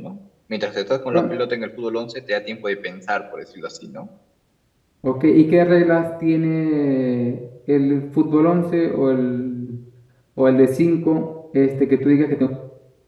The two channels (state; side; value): identical; both; correlation 1.00